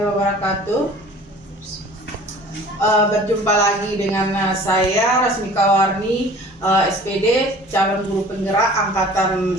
Berjumpa lagi dengan saya Rasmika Warni, SPD calon guru penggerak angkatan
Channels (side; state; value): both; normal; correlation 0.47